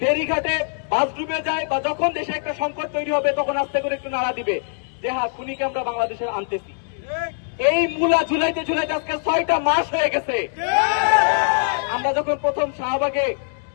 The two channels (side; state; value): right; silent; digital silence